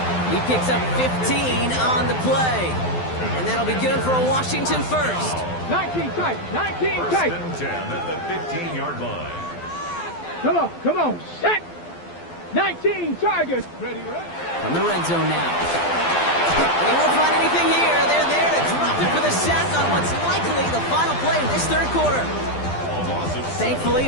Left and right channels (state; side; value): late; right; 12 ms